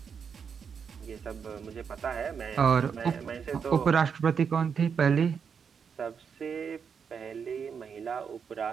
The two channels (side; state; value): left; quieter; 6.6 dB